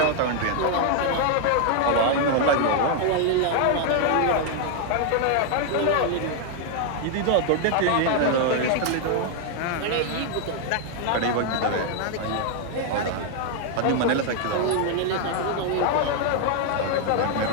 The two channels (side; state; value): both; different; correlation 0.00